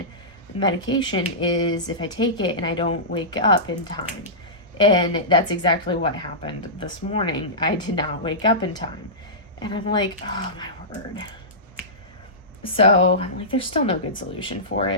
is if I take it and I don't wake up in time. And that's exactly what happened this morning. I did not wake up in time. And I'm like, oh my word. So I'm like, there's still no good solution for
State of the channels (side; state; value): both; normal; correlation -0.18